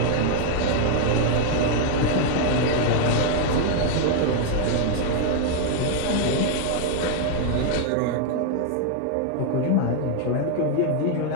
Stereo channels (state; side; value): different; both; correlation 0.00